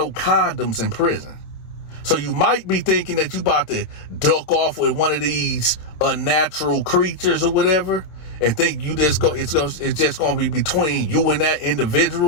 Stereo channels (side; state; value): right; late; 27 ms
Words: condoms in prison. So you might be thinking that you about to duck off with one of these unnatural creatures or whatever, and think it's just going to be between you and that